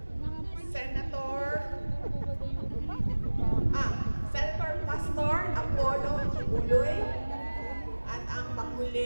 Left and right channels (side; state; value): both; inverted; correlation -1.00